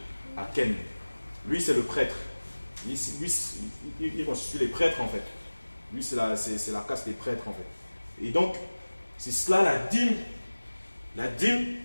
à Ken. Lui, c'est le prêtre. Il constitue les prêtres, en fait. Lui, c'est la caste des prêtres, en fait. Et donc, c'est cela la dîme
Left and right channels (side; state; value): both; inverted; correlation -1.00